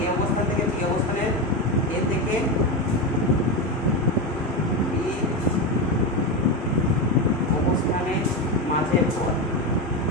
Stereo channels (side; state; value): both; normal; correlation 0.15